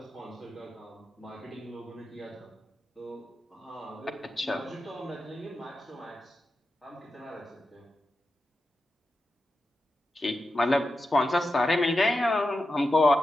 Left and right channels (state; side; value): normal; both; correlation 0.90